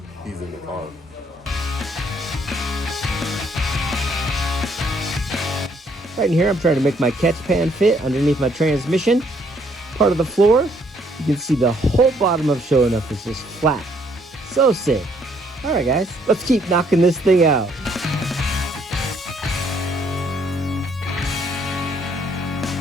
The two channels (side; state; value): both; normal; correlation 0.67